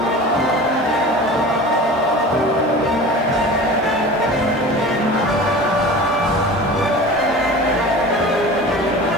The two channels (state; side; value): normal; both; correlation 0.36